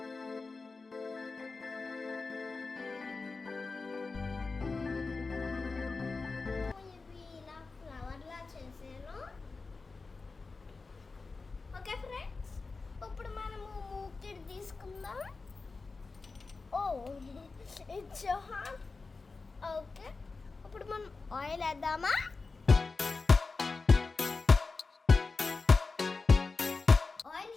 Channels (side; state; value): right; quieter; 4.1 dB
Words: Okay friends, ఇప్పుడు మనము మూకిడ్ తీసుకుందాం. Oh it's hot. ఓకే, ఇప్పుడు మనం ఆయిల్ వేద్దామా. ఆయిల్